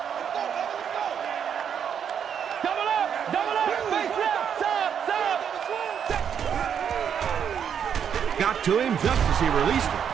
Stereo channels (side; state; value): left; quieter; 8.1 dB